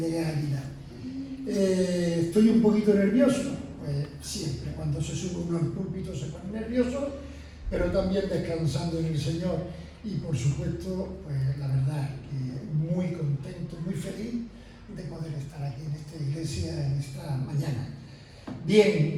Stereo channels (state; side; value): identical; both; correlation 1.00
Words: a Águila. Estoy un poquito nervioso, pues siempre, cuando se sube uno al púlpito se pone nervioso, pero también descansando en el Señor. Y por supuesto, pues la verdad que muy contento, muy feliz de poder estar aquí en esta iglesia en esta mañana.